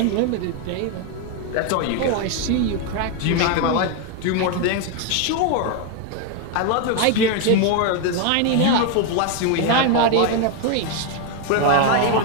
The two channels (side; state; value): both; different; correlation 0.01